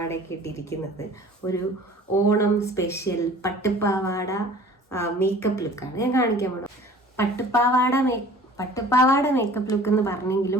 ഇട്ടിരിക്കുന്നത് ഒരു ഓണം സ്പെഷ്യൽ പട്ടുപ്പാവാട മേക്കപ്പ് ലുക്കാണ് ഞാൻ കാണിക്കാൻ പോകുന്നത്. പട്ടുപ്പാവാട മേക്കപ്പ് ലുക്ക് എന്ന്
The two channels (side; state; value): both; normal; correlation 0.47